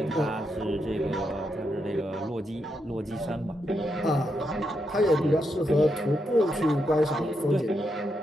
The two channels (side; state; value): both; normal; correlation 0.82